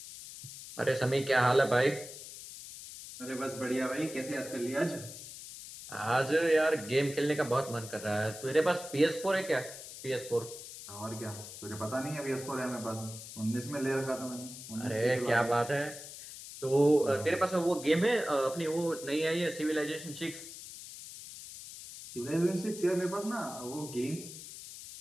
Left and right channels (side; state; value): left; noise; hiss, 12 dB below the sound